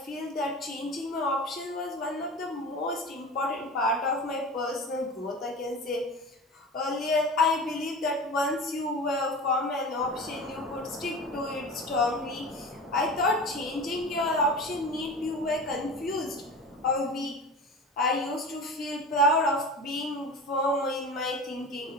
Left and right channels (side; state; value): both; normal; correlation 0.33